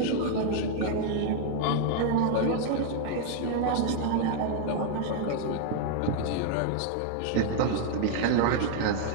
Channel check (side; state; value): both; different; correlation 0.00